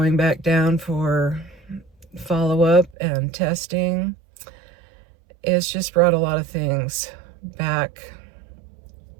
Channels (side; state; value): left; drops out; at 3.0 s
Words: back down for follow-up and testing, it's just brought a lot of things back.